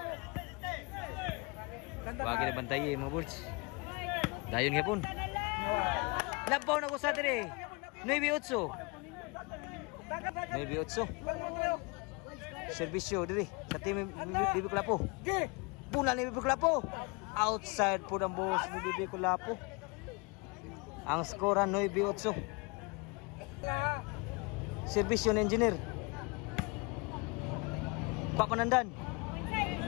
Bagi na bantaye mga birds. Dayon nga pun. Labaw na ko sa dire. 9-8. Serbisyo diri sa team Pikulapo. Bunal ni Pikulapo. Outside po ng boss ni Pikulapo. Ang skora 9-8. Serbisyo ng engineer. Papanandan.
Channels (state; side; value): quieter; right; 29.6 dB